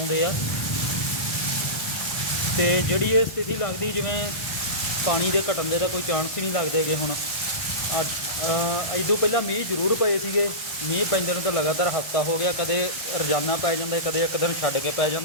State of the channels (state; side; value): late; right; 1.2 ms